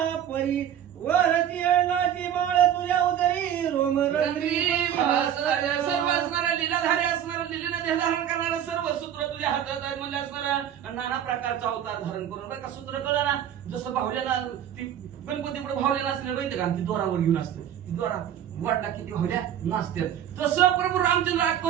परी वरती अण्णाची माळ तुझ्या उदरी रोम रंगरी सर्व असणारा लीलाधारी असणारा लीलेने देह धारण करणारा सर्व सूत्र तुझ्या हातात आहे म्हणजे असणारा नाना प्रकारचा अवतार धारण करून बरं का सूत्र कळलं ना जसं भावल्याला ती गणपतीपुढे भावल्या नसले माहिती का ती दोरावर घेऊन असते ती दोरा वाटला किती भावल्या नाचतात तसं प्रभू रामचंद्र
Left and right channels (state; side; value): quieter; left; 10.0 dB